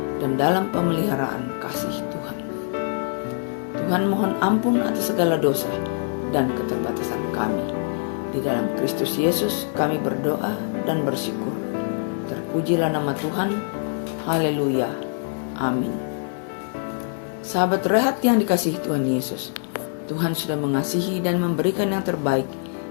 dan dalam pemeliharaan kasih Tuhan. Tuhan mohon ampun atas segala dosa dan keterbatasan kami. Di dalam Kristus Yesus kami berdoa dan bersyukur. Terpujilah nama Tuhan. Haleluya. Amin. Sahabat Rehat yang dikasihi Tuhan Yesus, Tuhan sudah mengasihi dan memberikan yang terbaik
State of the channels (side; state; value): right; silent; 61 dB below the other